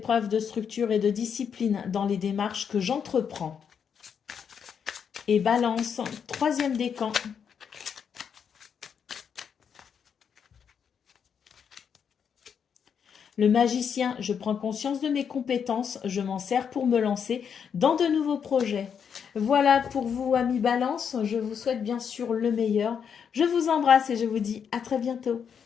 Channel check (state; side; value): quieter; right; 7.3 dB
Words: de structure et de discipline dans les démarches que j'entreprends. Et balance, troisième décan. Le magicien, je prends conscience de mes compétences, je m'en sers pour me lancer dans de nouveaux projets. Voilà pour vous, amis Balance, je vous souhaite bien sûr le meilleur. Je vous embrasse et je vous dis à très bientôt.